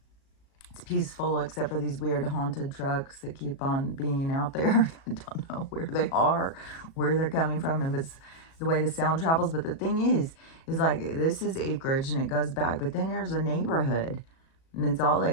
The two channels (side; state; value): right; late; 37 ms